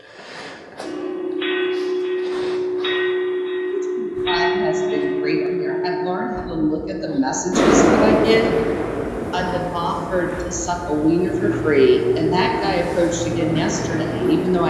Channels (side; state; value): both; identical; correlation 1.00